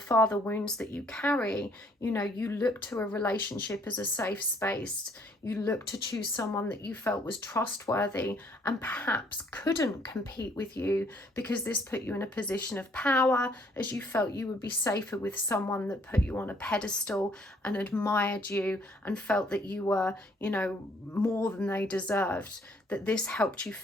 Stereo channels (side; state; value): both; normal; correlation 0.64